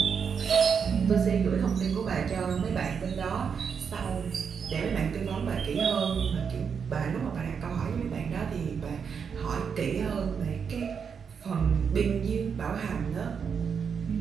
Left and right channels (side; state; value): left; quieter; 6.6 dB